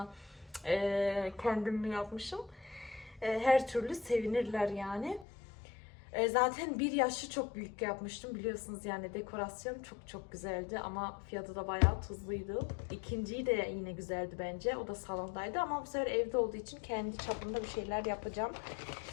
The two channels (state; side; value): drops out; right; at 5.2 s